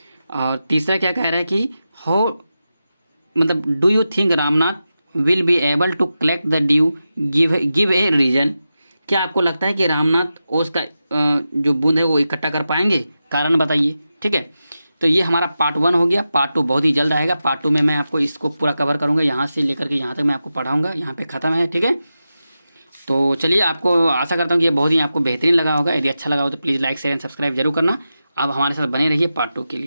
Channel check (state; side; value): inverted; both; correlation -0.91